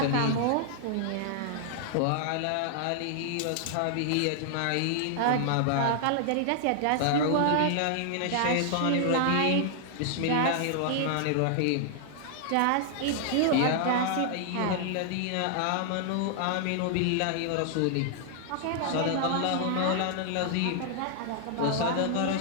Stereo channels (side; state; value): both; different; correlation 0.00